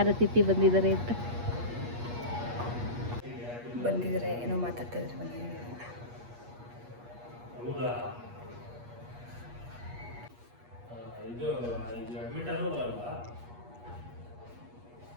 ಅತಿಥಿ ಬಂದಿದ್ದಾರೆ ಅಂತ. ಬಂದಿದ್ದಾರೆ, ಏನೋ ಮಾತಾಡ್ತಾ ಇದ್ದಾರೆ. ಬಂದಿದ್ದಾರೆ.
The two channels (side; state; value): left; late; 8.4 ms